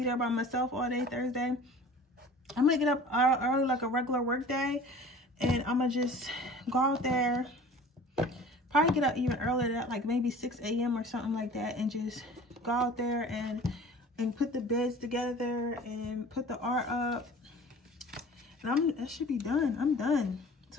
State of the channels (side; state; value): both; normal; correlation 0.43